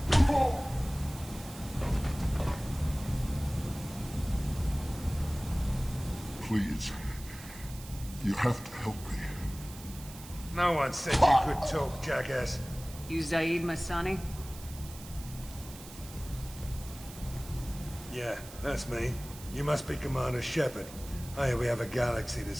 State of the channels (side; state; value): right; noise; hiss, 16 dB below the sound